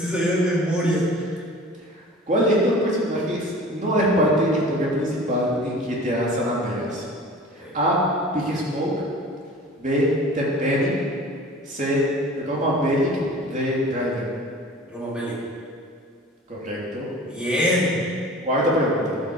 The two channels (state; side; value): normal; both; correlation 0.42